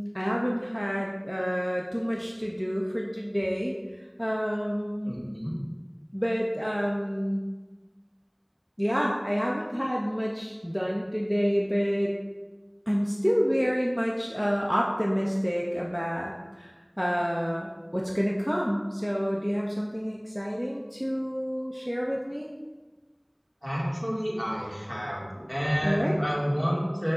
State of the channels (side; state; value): both; identical; correlation 1.00